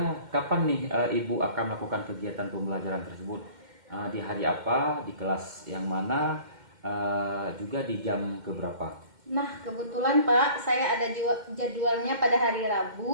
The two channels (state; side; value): late; left; 2.1 ms